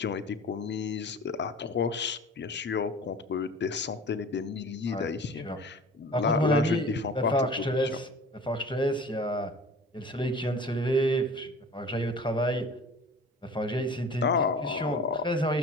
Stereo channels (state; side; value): normal; both; correlation 0.42